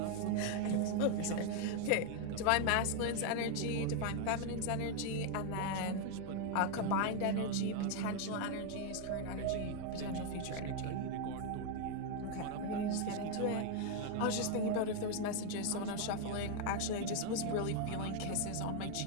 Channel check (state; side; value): different; both; correlation 0.01